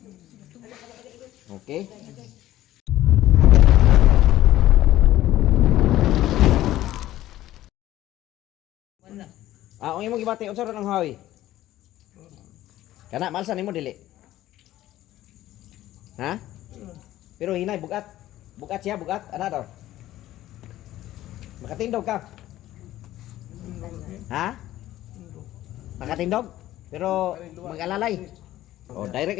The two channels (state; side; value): quieter; right; 14.5 dB